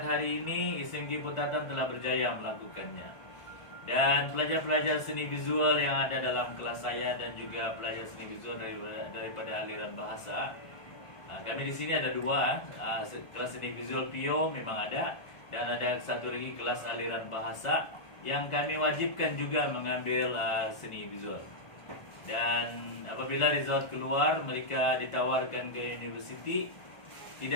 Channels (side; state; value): right; late; 1.4 ms